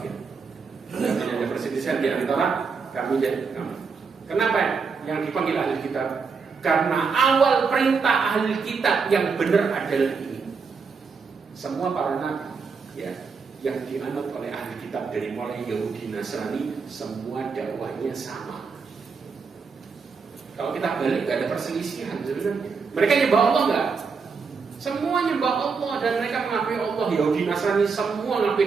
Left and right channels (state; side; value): quieter; left; 5.2 dB